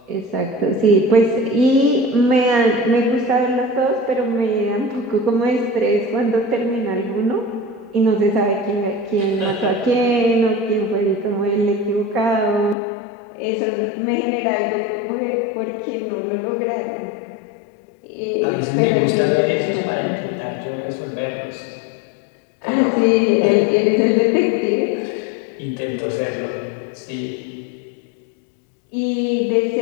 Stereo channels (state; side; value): drops out; right; at 12.8 s